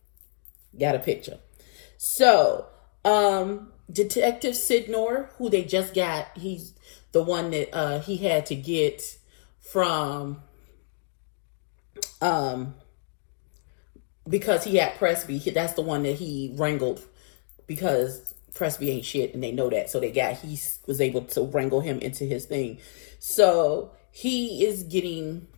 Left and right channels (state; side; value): silent; right; digital silence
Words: got a picture. So, Detective Sidnor, who they just got, he's the one that he had to get from, because he had Presby. That's the one that he wrangled because Presby ain't shit, and they know that. So he was able to wrangle him into his thing. So he is getting